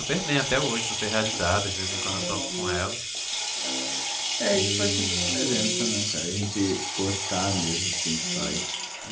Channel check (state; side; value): identical; both; correlation 1.00